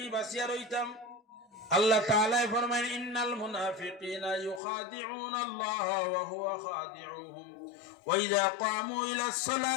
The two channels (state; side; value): drops out; right; at 4.6 s